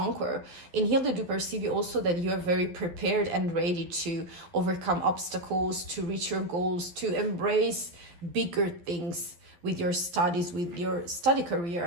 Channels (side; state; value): left; late; 12 ms